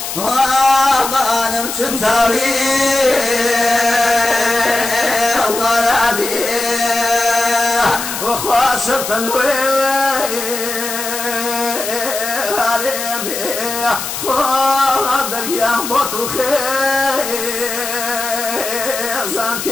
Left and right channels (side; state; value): left; noise; hiss, 6 dB below the sound